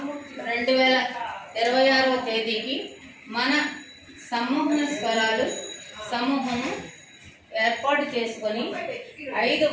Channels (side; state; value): both; identical; correlation 1.00